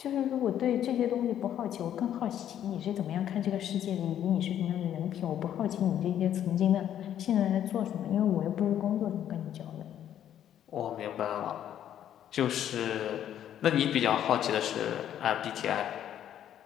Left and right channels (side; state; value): right; quieter; 10.6 dB